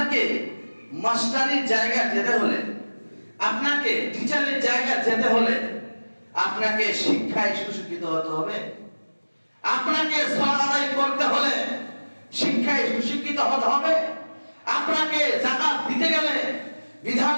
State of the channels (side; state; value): both; inverted; correlation -1.00